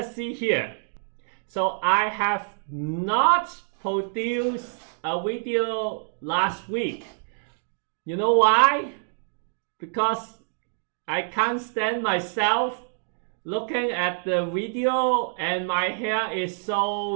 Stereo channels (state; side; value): silent; left; digital silence